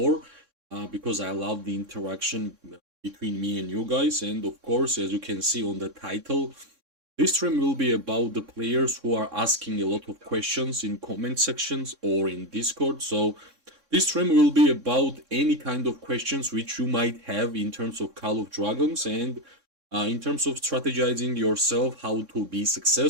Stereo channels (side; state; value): left; late; 3.6 ms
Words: because I love the interaction between me and you guys. And of course, as you can see on the title, this stream will be about the players who are asking a lot of questions in comment sections or in Discord. So this stream will be about any kind of questions which you might have in terms of Call of Dragons and in terms of strategizing yourself, how to be